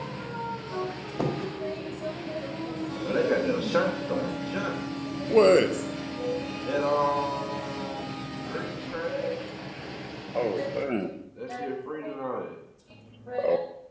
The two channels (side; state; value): both; identical; correlation 1.00